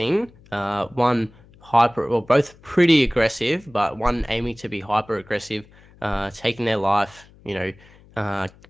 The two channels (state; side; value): noise; left; hum, 26 dB below the sound